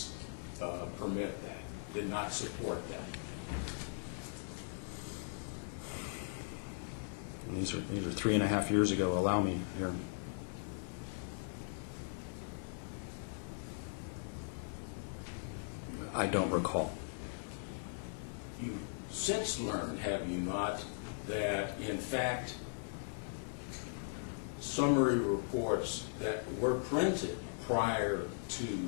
permit that, did not support that. These are 3.5 years ago. Allow me here. I don't recall. You since learned, have you not, that in fact summary reports that were printed prior to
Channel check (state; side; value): silent; right; 52 dB below the other